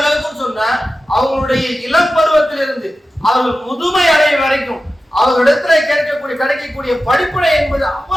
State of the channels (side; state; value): both; normal; correlation 0.94